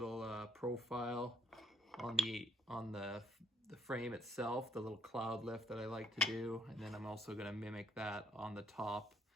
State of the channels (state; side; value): normal; both; correlation 0.69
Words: profile on the frame itself, the little cloud lift that I like to do. And then I'm also going to mimic that on the top